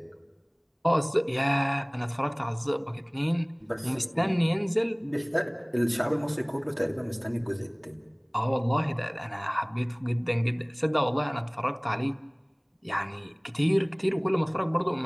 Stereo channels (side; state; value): both; identical; correlation 1.00